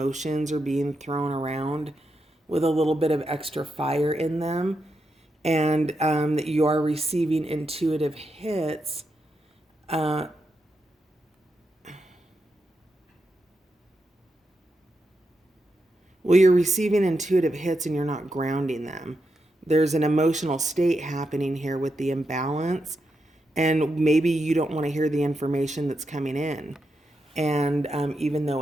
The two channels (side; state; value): both; normal; correlation 0.85